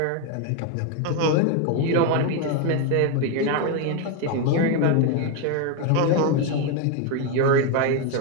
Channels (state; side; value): different; both; correlation 0.02